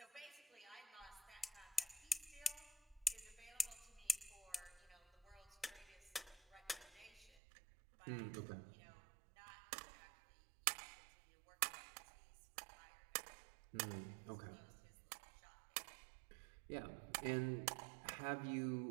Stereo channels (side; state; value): left; drops out; at 7.4 s